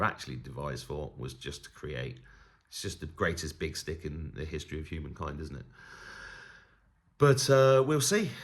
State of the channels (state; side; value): identical; both; correlation 1.00